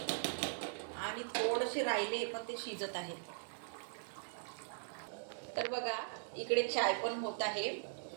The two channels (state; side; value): silent; left; 51 dB below the other